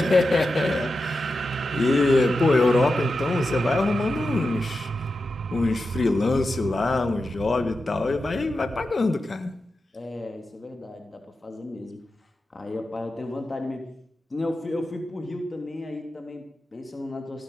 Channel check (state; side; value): normal; both; correlation 0.90